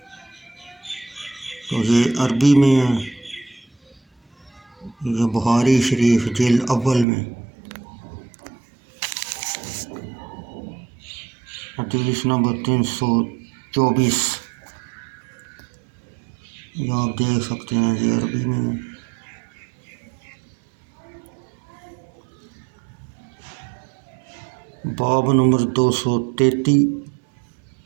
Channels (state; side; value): drops out; left; at 7.1 s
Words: تو یہ عربی میں ہے، یہ بخاری شریف جلد اول میں حدیث نمبر 324، یہ آپ دیکھ سکتے ہیں، یہ عربی میں ہے۔ باب نمبر 233،